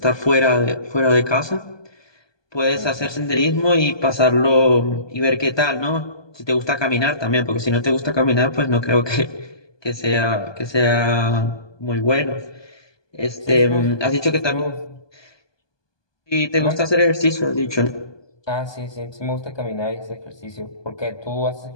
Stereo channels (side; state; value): right; late; 1.2 ms